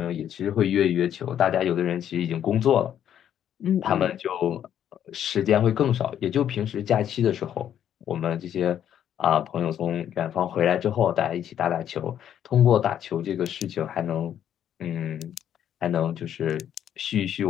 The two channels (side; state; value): right; quieter; 10.0 dB